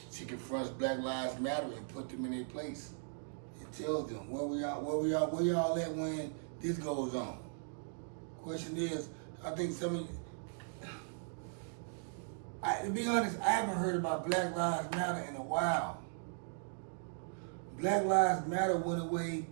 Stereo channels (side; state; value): left; silent; digital silence